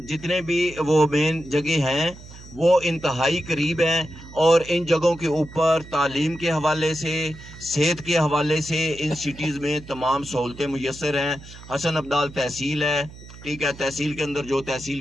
जितने भी वो मेन जगह हैं वो इंतहाई करीब हैं और इन जगहों के ऊपर तालीम के हवाले से, सेहत के हवाले से इन सिटीज़ में तमाम सहूलतें मुयस्सर हैं। हसन अब्दाल तहसील है, ठीक है, तहसील के अंदर जो तहसील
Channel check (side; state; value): right; noise; hum, 17 dB below the sound